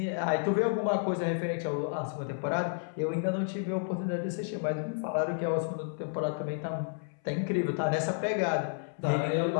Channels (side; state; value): right; silent; 57 dB below the other